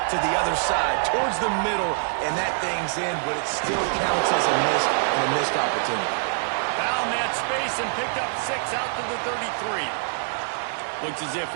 to the other side, towards the middle, and that thing's in, but it still counts as a missed opportunity. Found that space and picked up 6 out to the 33. Looks as if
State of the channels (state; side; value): silent; left; digital silence